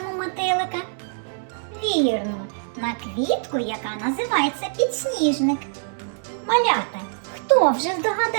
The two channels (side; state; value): left; silent; digital silence